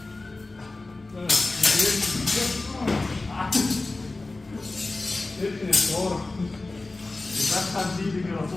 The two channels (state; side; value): quieter; right; 3.2 dB